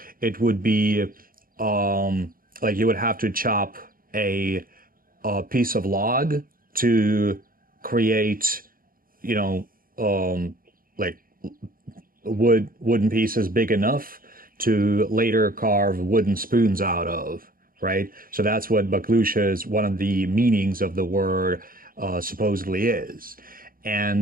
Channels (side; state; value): left; late; 0.41 ms